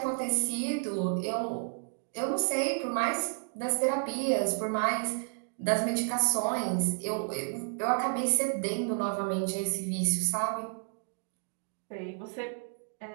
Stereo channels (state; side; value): silent; left; 57 dB below the other